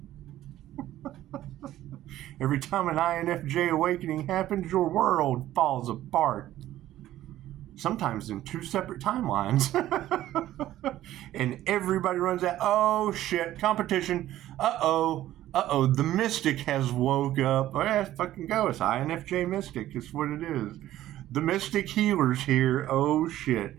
Every time an INFJ awakening happens, your world falls apart. Sometimes in two separate timelines. And everybody runs out. Oh shit, competition. Uh-oh, the mystic has woke up. Oh yeah, fucking go. It's INFJ mystic. It's what it is. The mystic healer's here. Oh shit.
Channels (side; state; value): left; quieter; 13.8 dB